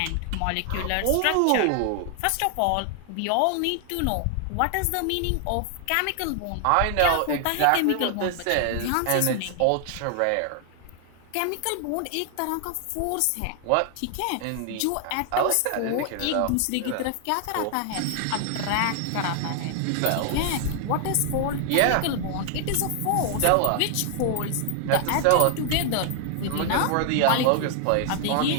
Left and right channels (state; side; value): different; both; correlation 0.00